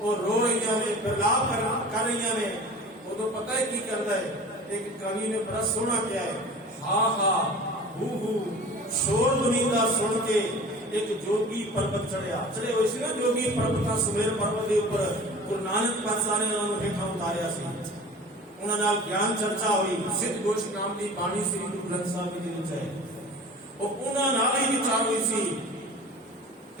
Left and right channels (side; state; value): both; normal; correlation 0.40